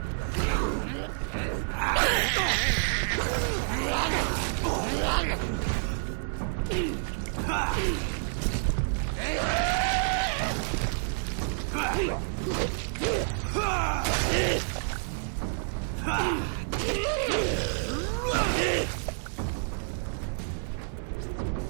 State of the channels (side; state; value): left; silent; digital silence